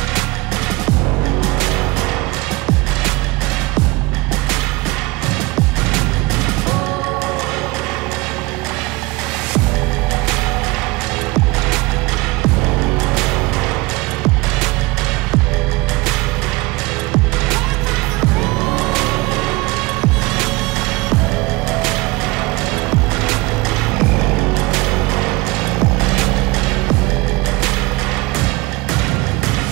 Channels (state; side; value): quieter; left; 23.2 dB